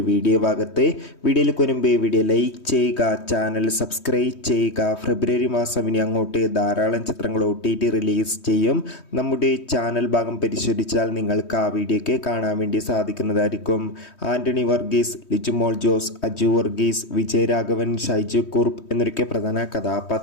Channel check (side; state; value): right; late; 3.2 ms